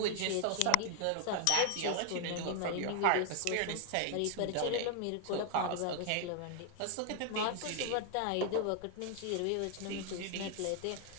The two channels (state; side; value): different; both; correlation 0.00